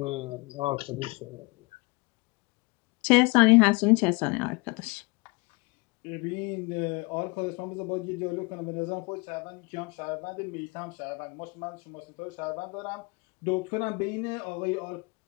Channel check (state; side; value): quieter; right; 27.4 dB